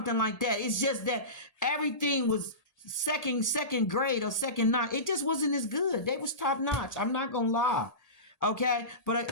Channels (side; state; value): right; late; 1.8 ms